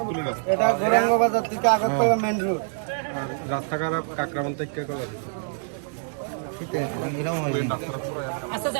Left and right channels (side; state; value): left; silent; 60 dB below the other